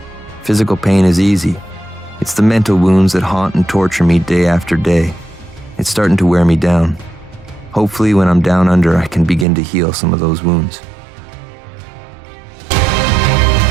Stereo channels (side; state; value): left; drops out; at 9.5 s